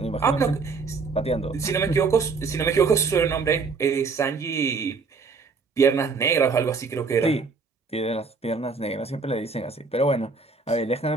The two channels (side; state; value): left; quieter; 4.5 dB